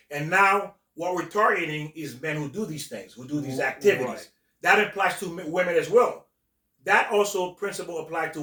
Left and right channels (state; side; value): identical; both; correlation 1.00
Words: And now what we're targeting is men who do these things, who do these activities. Right. That applies to women as well. That also principle applies to